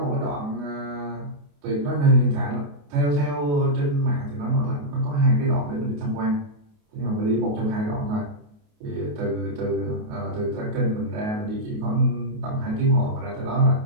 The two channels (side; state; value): left; late; 28 ms